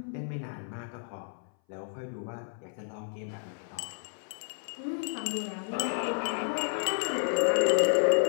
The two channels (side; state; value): right; silent; 57 dB below the other